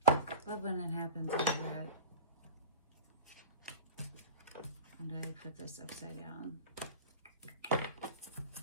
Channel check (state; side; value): inverted; both; correlation -0.30